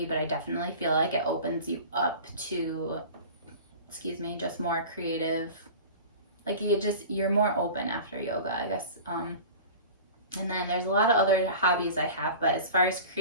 but I definitely feel like it opens you up to, just more creative. Like you're more open after yoga, I guess. And then there's a lot of other hobbies I have, but as far as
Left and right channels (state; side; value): inverted; both; correlation -0.37